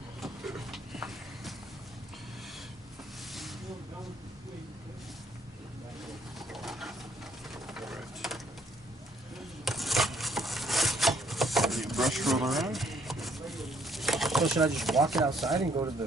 Brush roll around. So should I just walk it outside and go to the...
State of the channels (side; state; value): both; normal; correlation 0.66